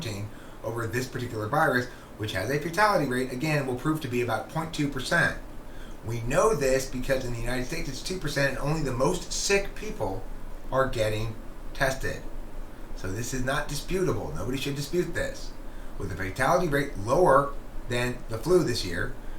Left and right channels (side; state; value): both; identical; correlation 1.00